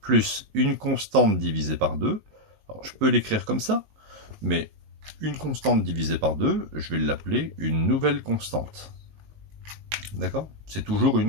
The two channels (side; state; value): left; late; 19 ms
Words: plus une constante divisée par 2. Alors, je peux l'écrire comme ça, mais une constante divisée par 2, je vais l'appeler une nouvelle constante. D'accord? C'est toujours